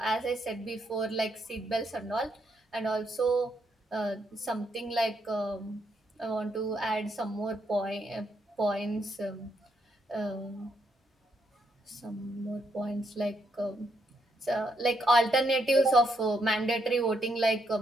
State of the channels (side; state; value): both; normal; correlation 0.77